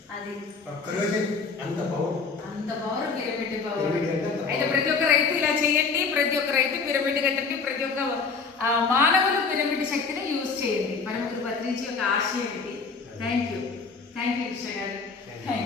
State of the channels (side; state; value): right; quieter; 4.8 dB